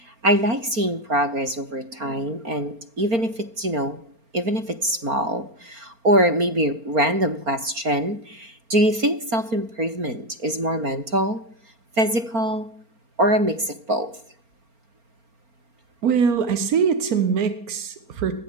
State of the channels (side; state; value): left; late; 4.4 ms